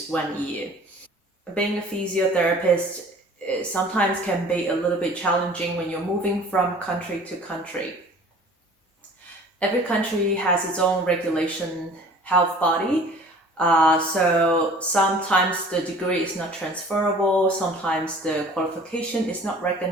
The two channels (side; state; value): both; normal; correlation 0.47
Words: 1 year. Being a physiotherapist sometimes can be a little bit challenging when you're moving from country to country. Every country has its own regulation health body. So sometimes the degree is not transferable, sometimes the qualification is not